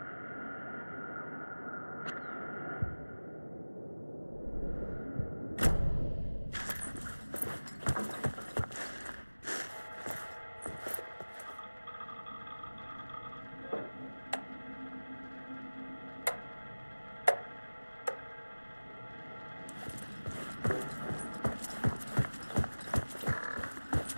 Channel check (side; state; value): both; inverted; correlation -1.00